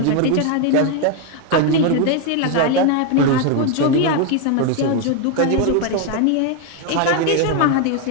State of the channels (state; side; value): different; both; correlation 0.01